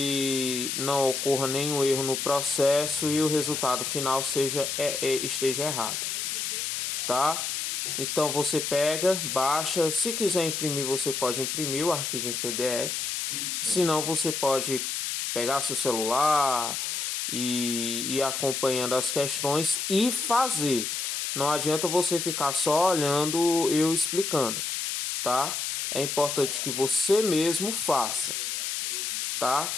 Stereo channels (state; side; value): noise; left; hiss, 2 dB below the sound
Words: não ocorra nenhum erro no processo e o resultado final esteja errado, tá? Então você pega, baixa, se quiser imprimir você pode imprimir o arquivo em PDF, se não você pode pegar seu celular e ir acompanhando as questões e fazer. Não adianta você ficar só olhando eu explicando, tá? É importante que você mesmo faça, tá?